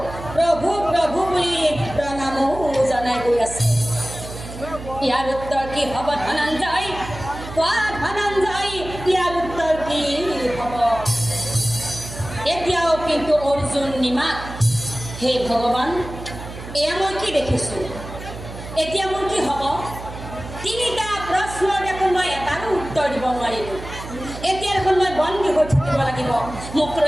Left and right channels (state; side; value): noise; right; hum, 12 dB below the sound